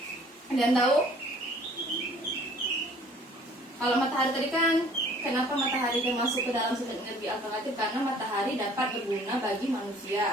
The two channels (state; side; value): normal; both; correlation 0.54